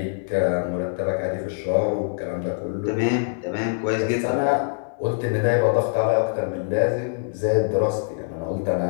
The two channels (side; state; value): right; silent; digital silence